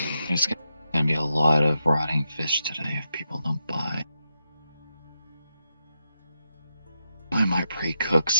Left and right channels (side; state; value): both; inverted; correlation -0.85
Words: there's gonna be a lot of rotting fish today if people don't buy. I might pre-cook